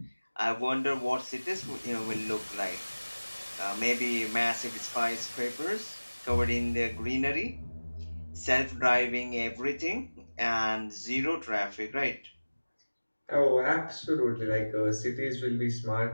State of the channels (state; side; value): inverted; both; correlation -1.00